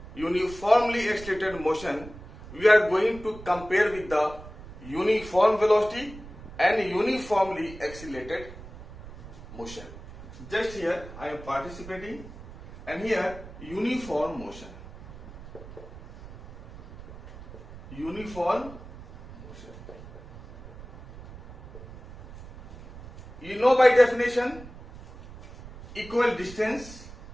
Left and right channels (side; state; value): right; noise; rumble, 16 dB below the sound